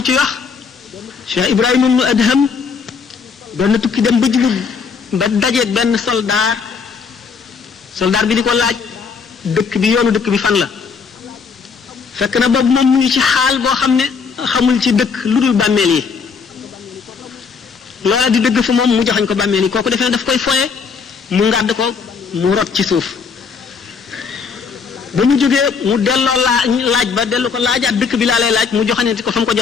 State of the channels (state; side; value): quieter; right; 5.6 dB